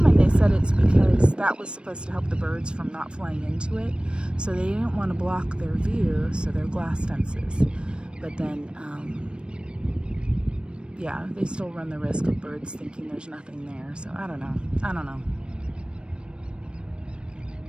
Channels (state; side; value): late; left; 0.056 ms